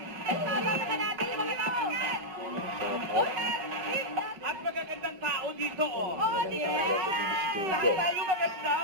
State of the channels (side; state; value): left; late; 5.3 ms